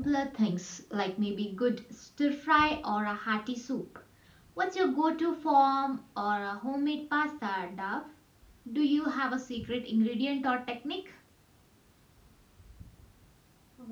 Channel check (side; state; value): both; identical; correlation 1.00